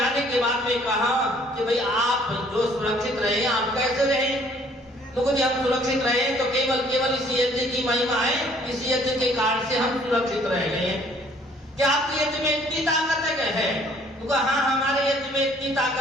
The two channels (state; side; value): normal; both; correlation 0.59